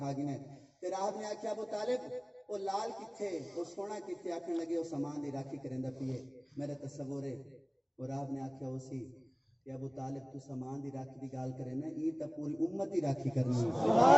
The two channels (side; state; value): both; identical; correlation 1.00